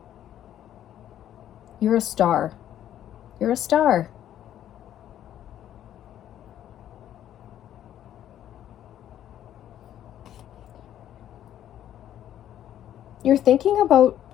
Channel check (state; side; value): quieter; right; 11.3 dB